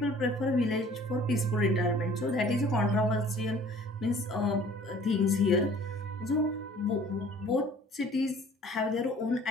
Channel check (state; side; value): normal; both; correlation 0.52